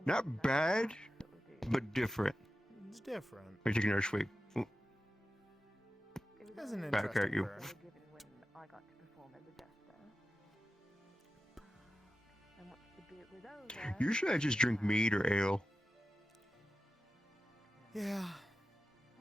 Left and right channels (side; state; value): both; normal; correlation 0.93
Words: Not bad, but different. It's different. Let me take another swig. Ooh. That's an Back at interesting you. burn. Given when I got to perform as a jester. And once the bit was over, Usually I just drink mead or ale. Yeah,